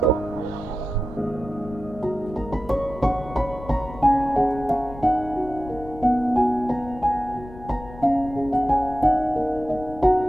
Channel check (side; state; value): left; noise; rumble, 16 dB below the sound